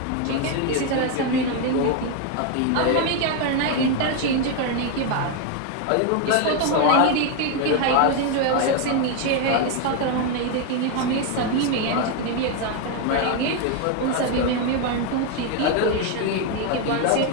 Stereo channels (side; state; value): both; different; correlation 0.01